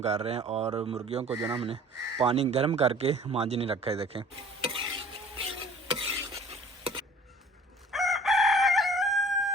कर रहे हैं और मुर्गियों को जो है हमने पानी गर्म करके मांझने रखा है। देखें,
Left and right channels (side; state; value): both; normal; correlation 0.49